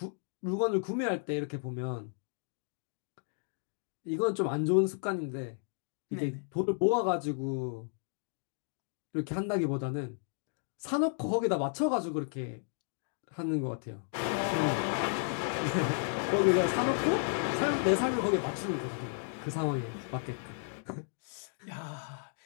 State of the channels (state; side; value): silent; right; 56 dB below the other